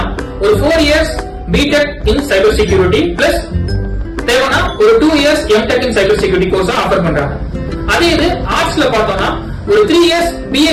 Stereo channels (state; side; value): identical; both; correlation 1.00